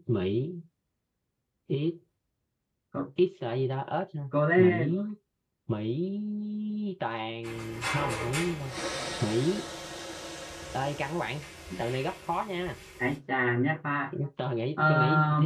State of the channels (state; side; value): identical; both; correlation 1.00